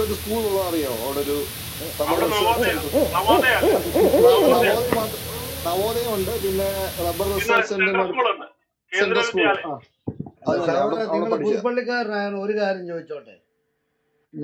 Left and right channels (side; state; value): both; identical; correlation 1.00